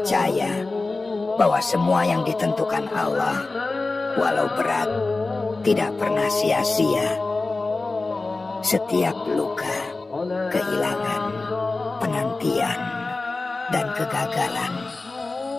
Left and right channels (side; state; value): right; quieter; 3.5 dB